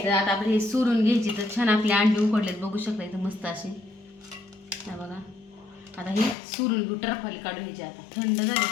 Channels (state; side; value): drops out; right; at 6.4 s